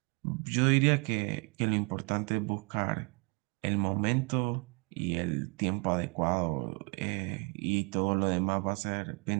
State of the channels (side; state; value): left; quieter; 32.0 dB